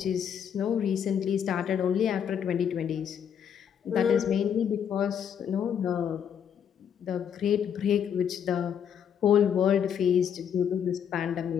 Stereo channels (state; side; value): quieter; right; 8.3 dB